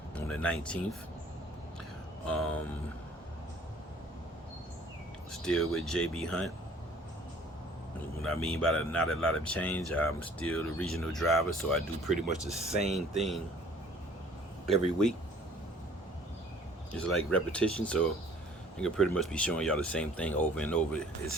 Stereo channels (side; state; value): both; normal; correlation 0.54